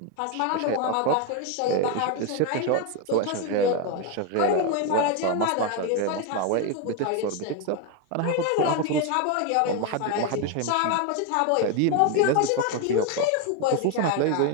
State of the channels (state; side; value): different; both; correlation 0.02